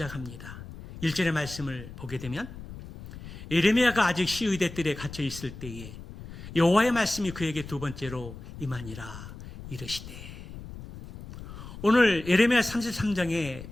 1절의 말씀을 보게 되면 예레미야가 아직 시위대 뜰에 갇혀 있을 때에 여호와의 말씀이 그에게 두 번째로 임하니라 이르시되. 오늘 예레미야 33장의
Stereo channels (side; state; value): left; noise; rumble, 13 dB below the sound